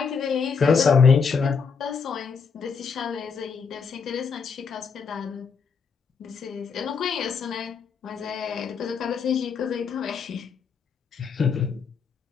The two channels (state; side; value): quieter; right; 5.7 dB